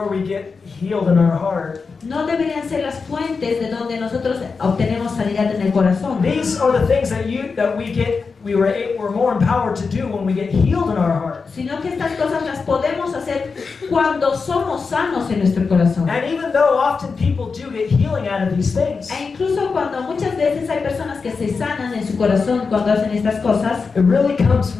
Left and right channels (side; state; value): right; quieter; 4.8 dB